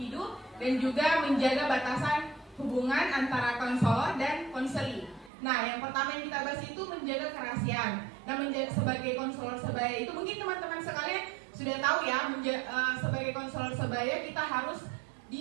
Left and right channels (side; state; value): left; drops out; at 5.3 s